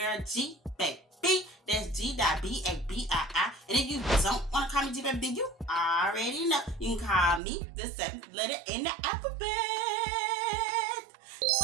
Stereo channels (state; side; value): drops out; left; at 7.4 s